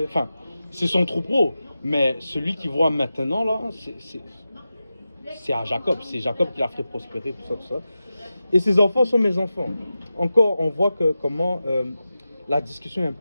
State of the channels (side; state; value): both; inverted; correlation -0.93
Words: Enfin, c'est son troupeau. Mais celui qui voit maintenant là, c'est à Jacob. C'est Jacob qui l'a fait prospérer, tout ça. Et ses enfants sont mes enfants. Encore, on voit comment la discussion est un